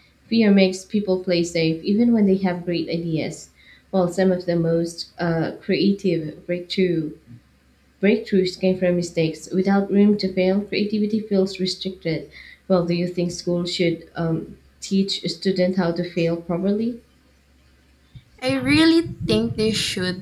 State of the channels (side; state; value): both; identical; correlation 1.00